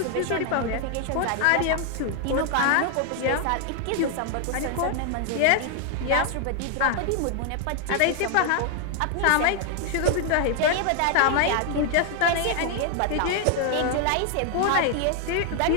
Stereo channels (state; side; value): different; both; correlation 0.00